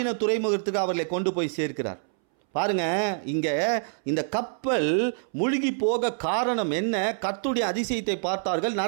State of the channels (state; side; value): silent; left; 61 dB below the other